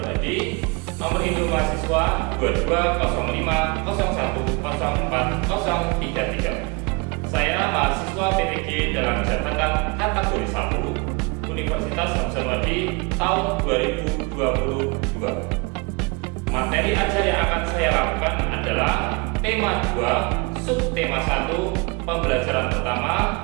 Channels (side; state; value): left; quieter; 29.3 dB